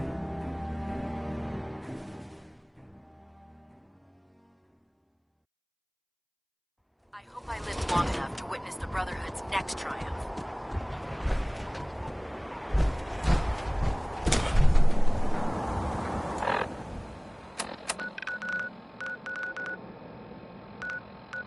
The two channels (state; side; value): identical; both; correlation 1.00